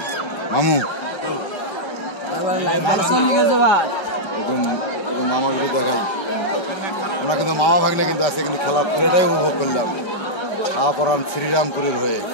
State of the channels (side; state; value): right; late; 1.3 ms